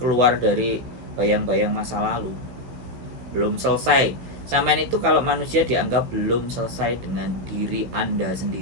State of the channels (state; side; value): late; left; 16 ms